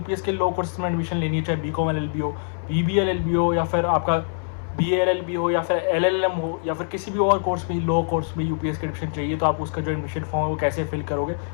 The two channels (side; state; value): right; silent; 62 dB below the other